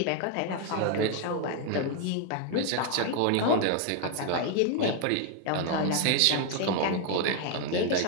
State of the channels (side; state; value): both; different; correlation 0.00